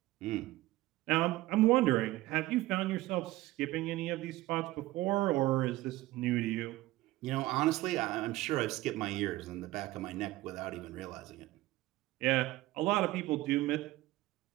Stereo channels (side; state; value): left; quieter; 17.6 dB